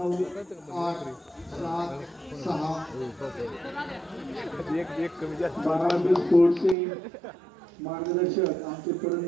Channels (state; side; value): drops out; left; at 6.8 s